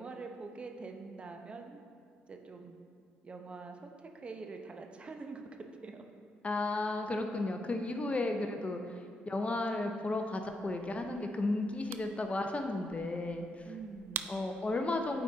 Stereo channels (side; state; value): both; normal; correlation 0.81